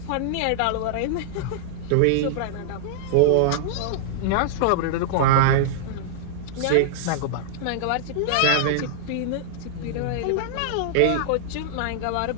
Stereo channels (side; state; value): both; different; correlation -0.01